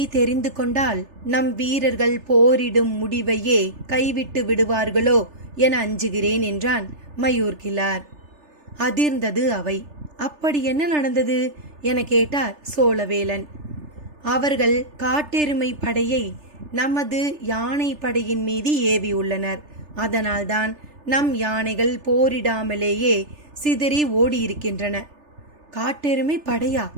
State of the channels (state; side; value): late; left; 3.3 ms